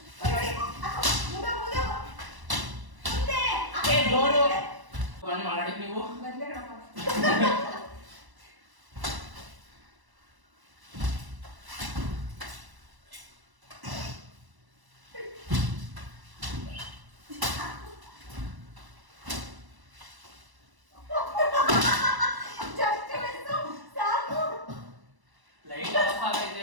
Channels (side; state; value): left; late; 1.0 ms